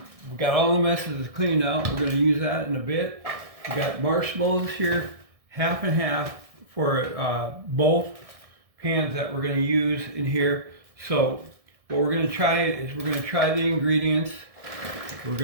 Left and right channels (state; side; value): late; left; 1.6 ms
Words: we got all the messes cleaned out. We're going to use that in a bit. We got marshmallows here, half and half for both pans that we're going to use in here. So what we're going to try is we're going to try the ingredients. We're